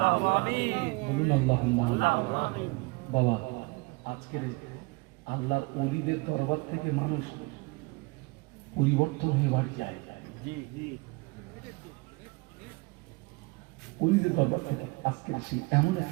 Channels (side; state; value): left; quieter; 26.7 dB